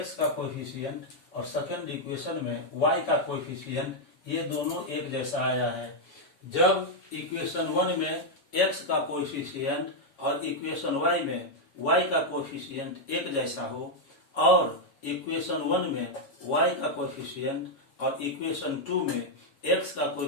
का कोएफिशिएंट और सेकंड इक्वेशन में y का कोएफिशिएंट ये दोनों एक जैसा आया है। जब इक्वेशन 1 में x का कोएफिशिएंट और इक्वेशन y में y का कोएफिशिएंट एक जैसा हो, और इक्वेशन 1 में y का कोएफिशिएंट और इक्वेशन 2 में x का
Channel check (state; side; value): late; right; 7.1 ms